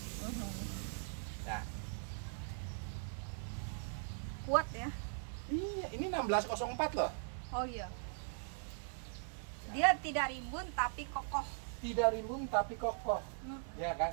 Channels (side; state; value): left; silent; 51 dB below the other